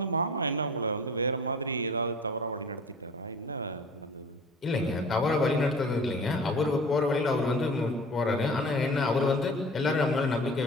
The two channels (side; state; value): both; normal; correlation 0.43